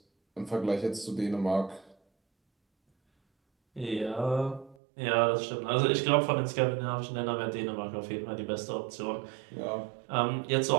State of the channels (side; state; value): left; drops out; at 4.8 s